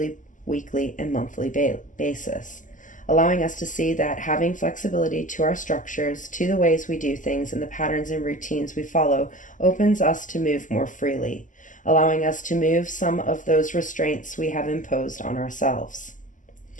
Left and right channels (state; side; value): late; right; 0.37 ms